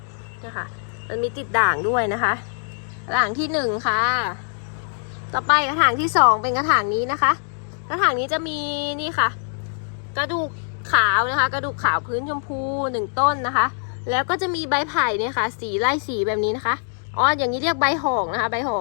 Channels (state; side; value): silent; right; digital silence